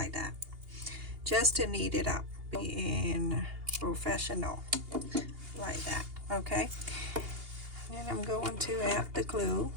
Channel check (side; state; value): left; late; 2.8 ms